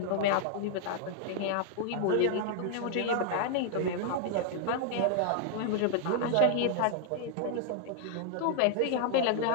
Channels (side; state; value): both; different; correlation 0.00